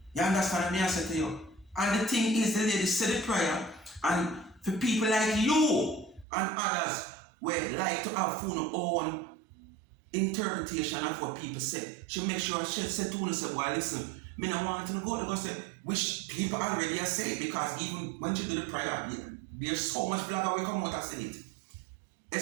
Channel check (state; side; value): drops out; left; at 6.2 s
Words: You understand what I say to you? And the thing is, the lady said the prayer, and for people like you and others who like to have their own interpretation of what people say, she make sure she said to us, say, well, listen, me not want to go to go say, which people already are saying, because even when she do the prayer, there's so much blogger will come out and say it.